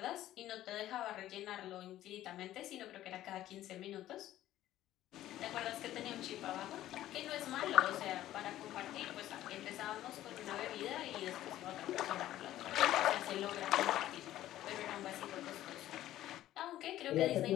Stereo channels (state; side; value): quieter; right; 13.7 dB